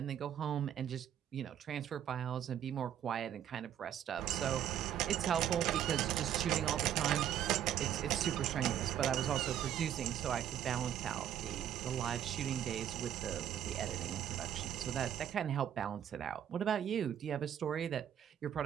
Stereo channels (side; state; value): left; quieter; 10.2 dB